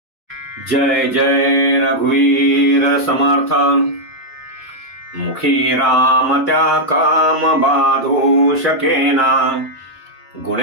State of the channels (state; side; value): normal; both; correlation -0.03